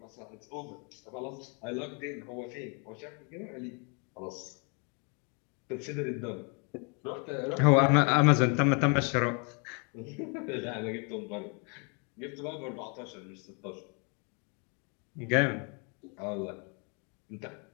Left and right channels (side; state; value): right; quieter; 35.4 dB